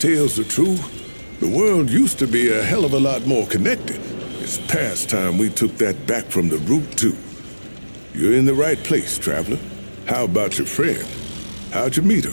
are true, the world used to be a hell of a lot more connected. It's past time we took that back from the root, too. You're in the right place, traveler. How about your friend? How'd you meet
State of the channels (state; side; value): inverted; both; correlation -1.00